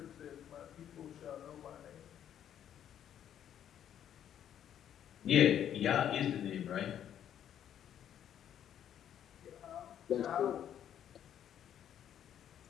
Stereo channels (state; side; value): quieter; right; 10.0 dB